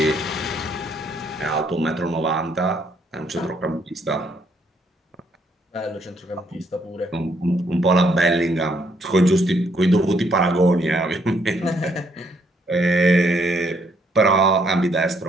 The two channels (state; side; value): normal; both; correlation 0.70